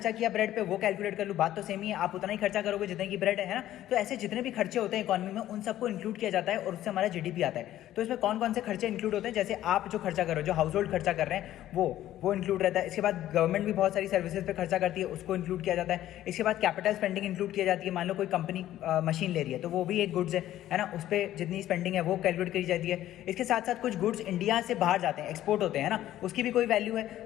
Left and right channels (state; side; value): quieter; right; 13.2 dB